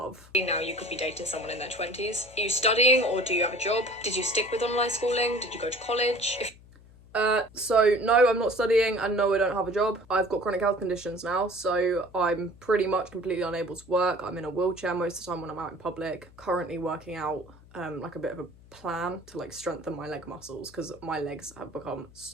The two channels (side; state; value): left; noise; hum, 23 dB below the sound